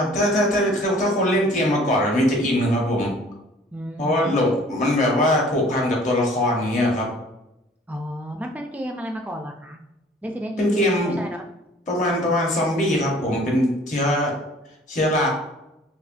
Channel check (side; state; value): both; normal; correlation 0.52